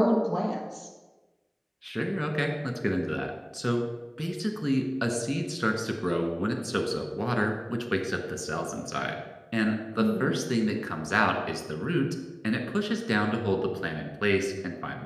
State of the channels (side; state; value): both; identical; correlation 1.00